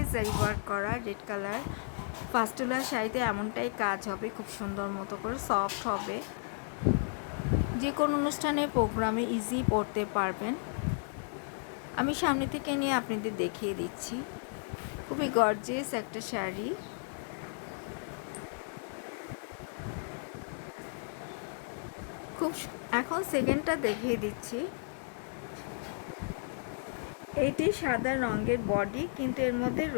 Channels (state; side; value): silent; right; 55 dB below the other